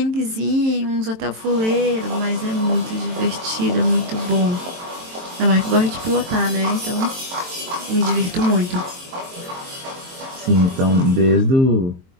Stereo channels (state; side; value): late; left; 23 ms